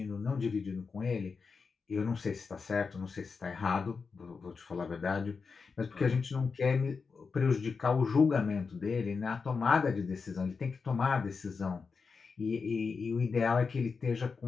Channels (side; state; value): right; quieter; 5.0 dB